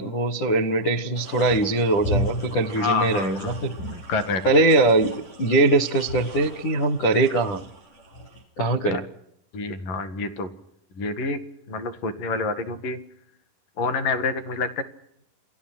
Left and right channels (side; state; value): right; late; 10 ms